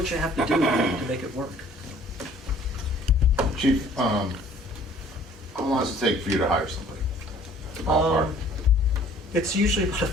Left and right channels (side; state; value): both; normal; correlation 0.54